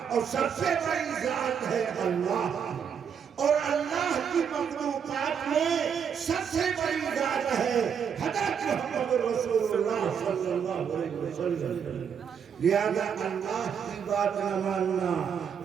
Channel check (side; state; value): left; quieter; 7.4 dB